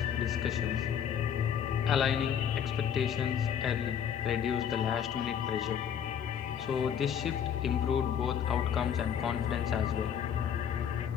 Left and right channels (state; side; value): quieter; right; 8.5 dB